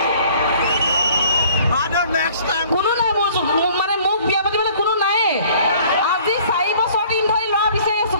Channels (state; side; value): inverted; both; correlation -0.54